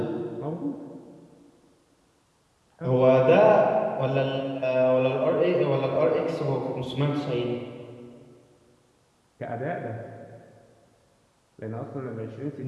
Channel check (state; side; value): identical; both; correlation 1.00